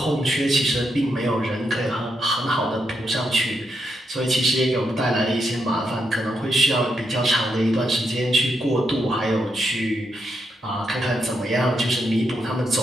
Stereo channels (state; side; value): normal; both; correlation 0.81